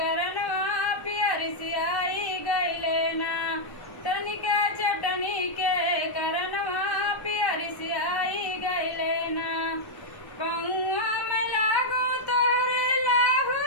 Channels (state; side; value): late; right; 1.1 ms